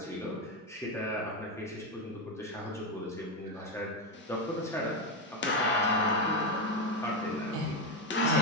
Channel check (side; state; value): both; normal; correlation 0.09